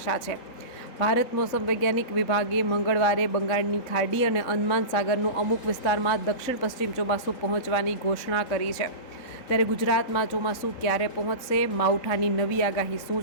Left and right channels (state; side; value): late; right; 3.6 ms